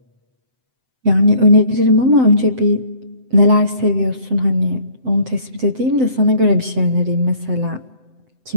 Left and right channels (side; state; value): left; late; 7.8 ms